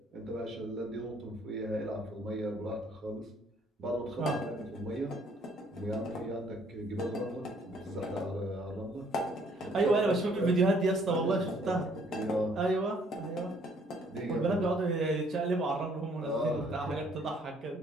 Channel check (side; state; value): both; normal; correlation 0.63